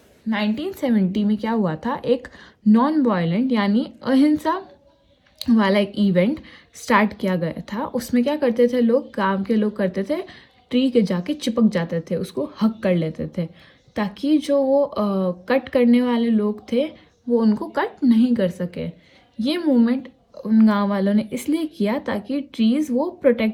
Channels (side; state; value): both; identical; correlation 1.00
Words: 1970 में क्या हुआ था, एक non violent यानी अहिंसा वाला एक event start किया गया था। उसमें क्या करते थे लोग, गांव के लोग करते थे, ट्री के जाके चिपक जाते थे, उसको हक कर लेते थे, ताकि जो वो कट करने वाले लोग थे वो उनको कट नहीं कर सके। ये मूवमेंट उन गांव वालों ने इसलिए किया ताकि ट्रीज़ वो